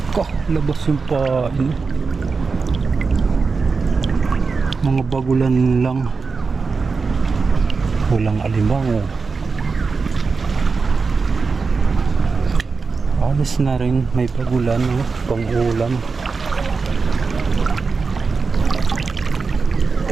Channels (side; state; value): left; quieter; 4.7 dB